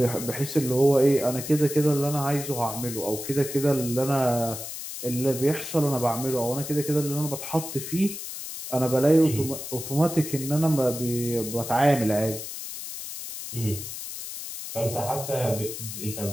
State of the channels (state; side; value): noise; left; hiss, 8 dB below the sound